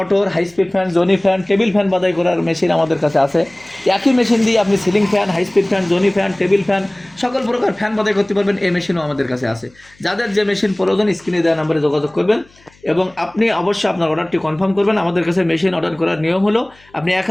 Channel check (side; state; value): left; noise; hum, 30 dB below the sound